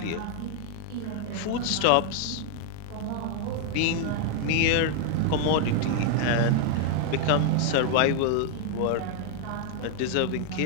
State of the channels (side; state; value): both; different; correlation 0.00